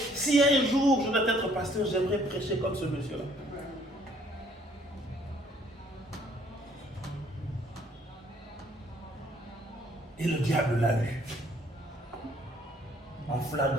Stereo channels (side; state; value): both; normal; correlation 0.62